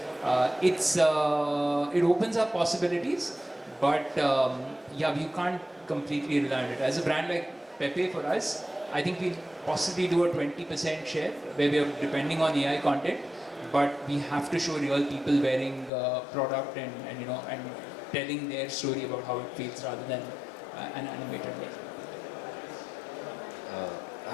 it opens up possibilities, but yeah, we can't completely rely on it. As a brand like Pepe, for us, I think we'll possibly do a 20% share where we are depending on AI content, but we have to show real people wearing product and you know, and telling their story about how it feels rather than an animated way.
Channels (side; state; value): right; drops out; at 15.9 s